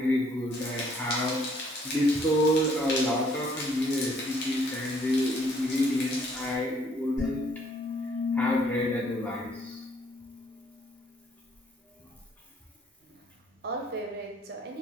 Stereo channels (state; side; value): normal; both; correlation 0.64